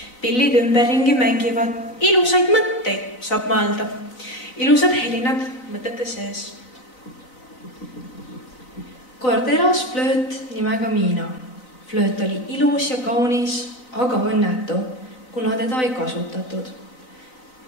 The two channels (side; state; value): right; late; 4.0 ms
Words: Pillid ümberringi mängivad. Ilusaid mõtteid saab mõelda. Ilusad helinad mõtete sees. Kord elas flööt nimega Miina. Flööt oli ilus ja kaunis, aga õnnetu, kuna teda ei kasutatud.